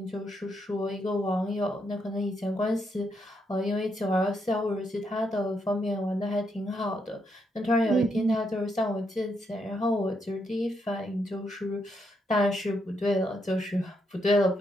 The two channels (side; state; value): both; normal; correlation 0.78